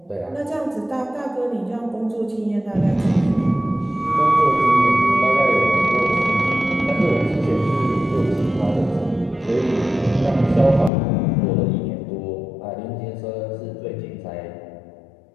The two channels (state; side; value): drops out; right; at 10.9 s